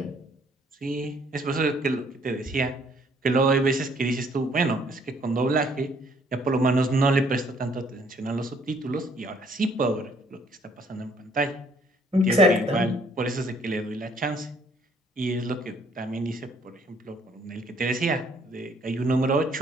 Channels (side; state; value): both; normal; correlation 0.63